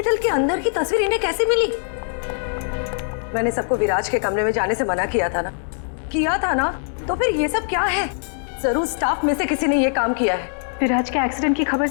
के अंदर की तस्वीर इन्हें कैसे मिली? मैंने सबको विराज के कमरे में जाने से मना किया था ना? तो फिर ये सब क्या है? जरूर स्टाफ में से किसी ने ये काम किया है। विराज के एक्सीडेंट की खबर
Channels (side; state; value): right; silent; digital silence